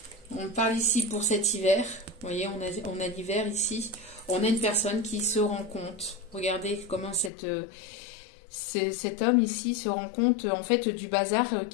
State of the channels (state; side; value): drops out; right; at 7.3 s